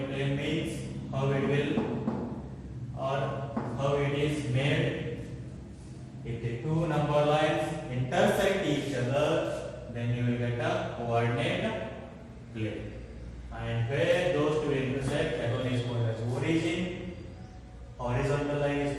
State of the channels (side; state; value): both; identical; correlation 1.00